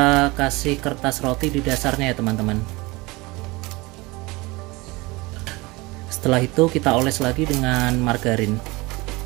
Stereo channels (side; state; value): left; quieter; 23.3 dB